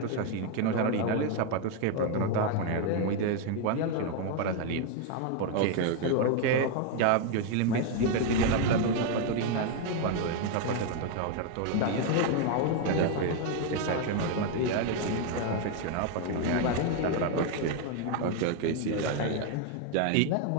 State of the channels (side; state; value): both; different; correlation 0.01